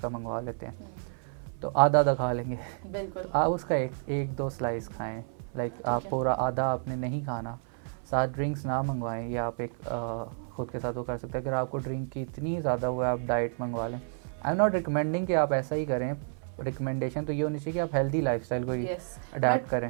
मंगवा लेते हैं, तो आधा आधा खा लेंगे। बिल्कुल। आप उसका एक दो स्लाइस खाएं, लाइक आप है। पूरा आधा आपने नहीं खाना। साथ ड्रिंक्स ना मंगवाएं, या आप एक खुद के साथ वो कर सकते हैं। अगर आपको ड्रिंक की इतनी ज़्यादा हुआ है, आप डाइट मंगवा लें। आई एम नॉट रिकमेंडिंग कि आप ऐसा ही करें, रिकमेंडेशन तो ये होनी चाहिए कि आप हेल्दी लाइफस्टाइल को ही यस, अडेप्ट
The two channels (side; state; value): left; silent; 55 dB below the other